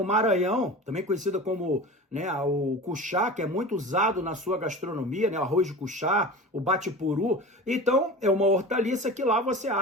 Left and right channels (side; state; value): both; normal; correlation 0.33